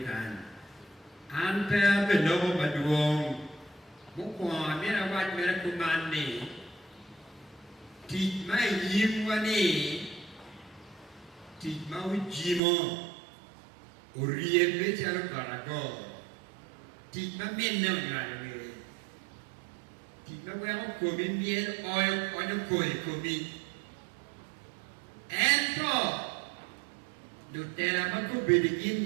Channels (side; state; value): left; drops out; at 12.6 s